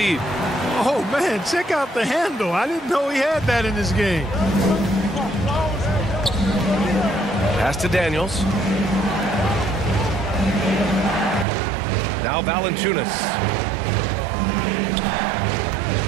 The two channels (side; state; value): left; drops out; at 11.5 s